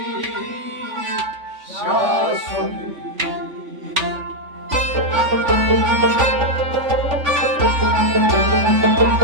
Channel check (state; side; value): late; left; 3.5 ms